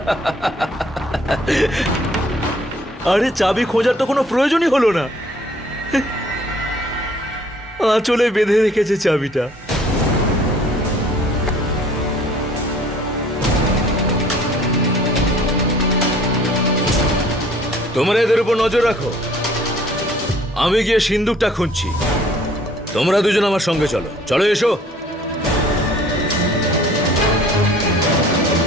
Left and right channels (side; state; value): both; normal; correlation 0.56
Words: আরে চাবি খোঁজার তো কোনো প্রয়োজনই হলো না, আঁচলে বেঁধে রেখেছে চাবিটা। তোমরা এদের উপর নজর রাখো, আমি গিয়ে সিন্দুকটা খুঁজছি। তোমরা দুজন আমার সঙ্গে চলো। চলো, এসো।